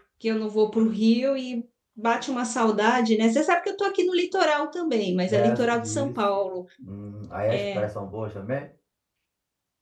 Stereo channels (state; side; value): identical; both; correlation 1.00